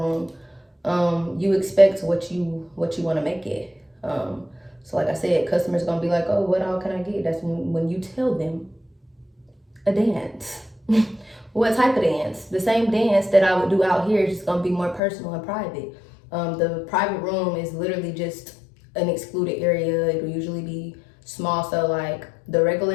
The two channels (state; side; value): drops out; right; at 15.0 s